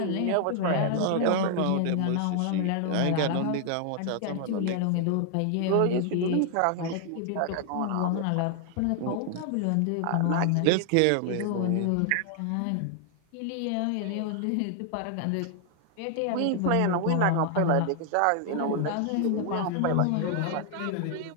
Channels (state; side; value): different; both; correlation 0.00